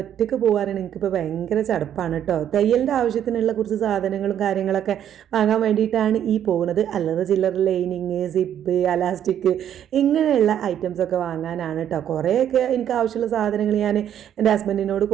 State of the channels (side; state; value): left; quieter; 10.0 dB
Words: ഒറ്റയ്ക്ക് പോകാനാണ് എനിക്കിപ്പോൾ ഭയങ്കര ചടപ്പാണ് കേട്ടോ. തയ്യലിൻ്റെ ആവശ്യത്തിനുള്ള കുറച്ച് സാധനങ്ങളും കാര്യങ്ങളൊക്കെ വാങ്ങാൻ വേണ്ടിയിട്ടാണ് ഈ പോകുന്നത്. അല്ലറ ചില്ലറ ലൈനിങ്, സിപ്പ്, അലാസ്റ്റിക് ഇങ്ങനെയുള്ള ഐറ്റംസൊക്കെ വാങ്ങാനാണ് കേട്ടോ. കുറേയൊക്കെ എനിക്ക് ആവശ്യമുള്ള സാധനങ്ങൾ ഞാൻ എൻ്റെ ഹസ്ബൻഡിനോട്